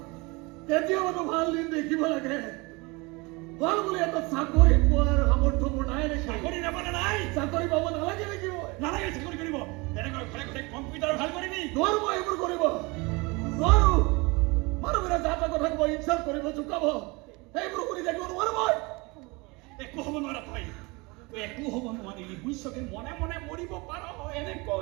কেতিয়াবাতো ভাল দিন দেখিব লাগে ভাল বুলি এটা চাকৰি পোৱাৰ সামৰ্থ্য মোৰ নাই নেকি চাকৰি নাপালে নাই চাকৰি পাব নালাগে নেকি নালাগে চাকৰি কৰিব তেনেকৈ ঘৰে ঘৰে কম্পিউটাৰ ভাল কৰিবি নোৱাৰো মই এইবোৰ কৰিব নোৱাৰো মানুহবোৰে যা তা কথা কব ইনচাল্ট কৰিব জোকাব এইবোৰ কৰি থাকিব নোৱাৰো মই একো হ'ব নোৱাৰা তই একো হ'ব নোৱাৰিলি বুজিছকে মনে মনে মৰিব পাৰ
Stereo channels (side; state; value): left; quieter; 26.0 dB